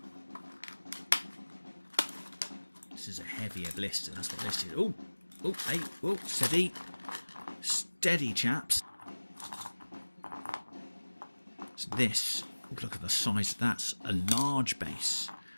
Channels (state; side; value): inverted; both; correlation -1.00